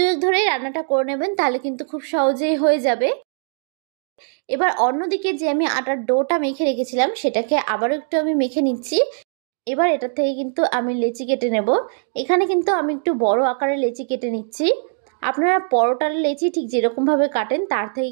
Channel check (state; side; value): silent; left; digital silence